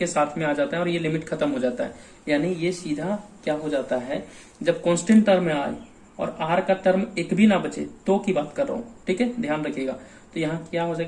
साथ में आ जाता है और ये लिमिट खत्म हो जाता है, यानी ये सीधा क्या हो जाता है, जब कांस्टेंट टर्म में आए और r का टर्म एक भी ना बचे तो की बात कर रहा हूँ। ठीक है, ध्यान रखिएगा, तो यहाँ क्या हो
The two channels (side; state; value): both; identical; correlation 1.00